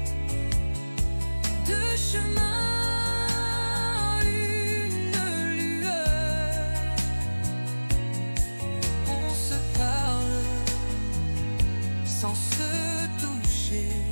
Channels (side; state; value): both; inverted; correlation -1.00